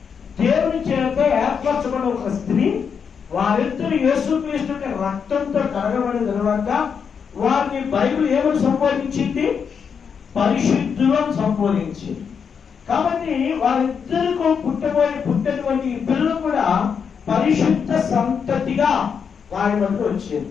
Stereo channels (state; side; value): quieter; right; 6.6 dB